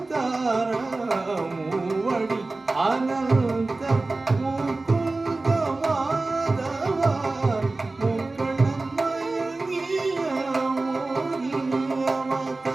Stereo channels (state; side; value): quieter; left; 3.3 dB